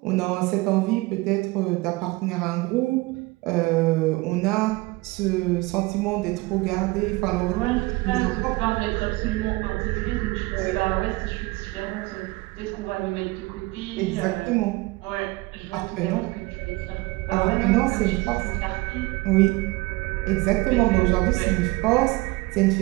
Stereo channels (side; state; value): left; quieter; 22.5 dB